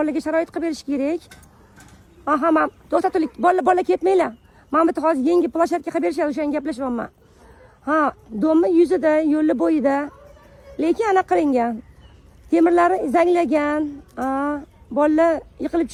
sharoit qilib berish kerak. Ha, men to'xtatuvlik, bola ketmanglar. Men bitta hozir yangi plashatka qilib berishadi, o'shani gaplashyapman. Ha, domni yuzida, yo'li bo'yida. Lekin anaqa qilingan. Temirlari zanglagan. Bolalar yiqilib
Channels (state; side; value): identical; both; correlation 1.00